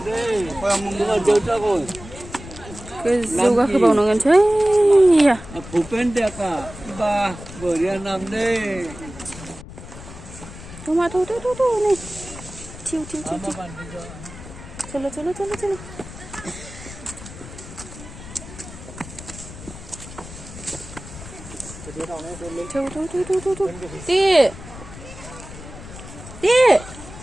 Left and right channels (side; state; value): left; noise; rumble, 14 dB below the sound